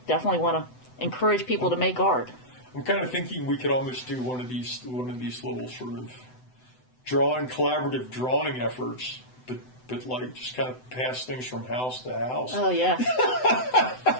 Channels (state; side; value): late; right; 7.9 ms